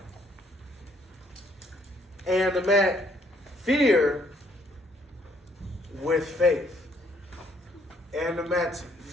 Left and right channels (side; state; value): both; normal; correlation 0.66